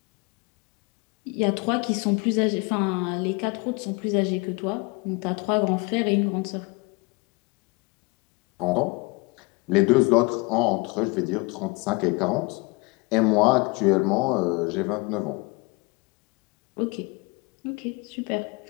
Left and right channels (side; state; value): right; quieter; 27.3 dB